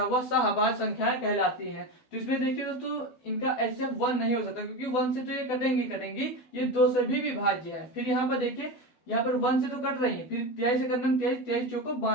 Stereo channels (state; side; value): late; right; 12 ms